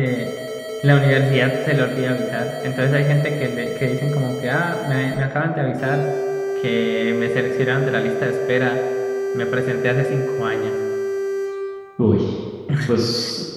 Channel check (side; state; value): both; identical; correlation 1.00